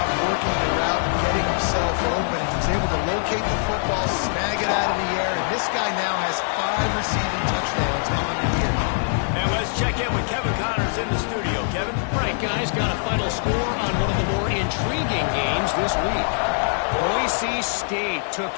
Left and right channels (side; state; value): right; silent; 63 dB below the other